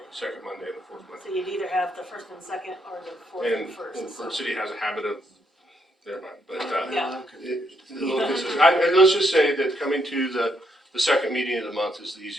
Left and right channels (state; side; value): normal; both; correlation 0.76